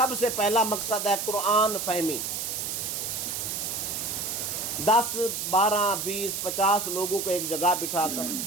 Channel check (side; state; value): right; noise; hiss, 3 dB below the sound